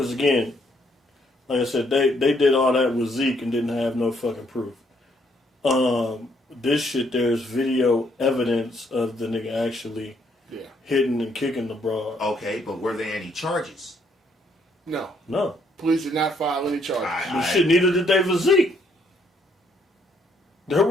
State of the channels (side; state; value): both; normal; correlation 0.70